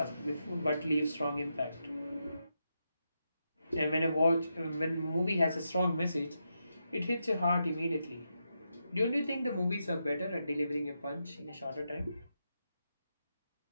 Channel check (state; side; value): inverted; both; correlation -0.85